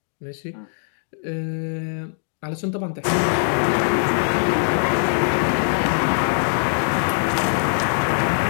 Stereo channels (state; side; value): silent; right; digital silence